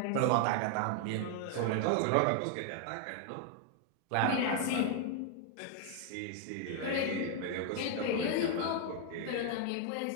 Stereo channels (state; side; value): different; both; correlation 0.00